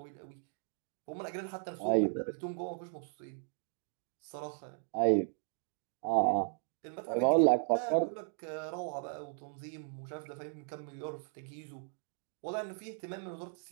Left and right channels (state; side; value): silent; left; 53 dB below the other